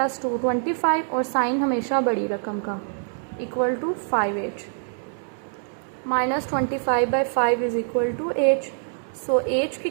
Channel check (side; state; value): left; silent; digital silence